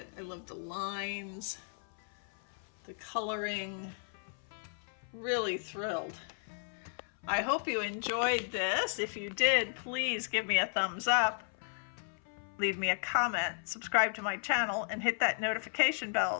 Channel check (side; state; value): right; silent; 55 dB below the other